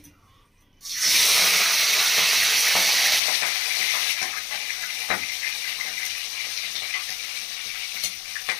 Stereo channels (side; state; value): right; drops out; at 3.2 s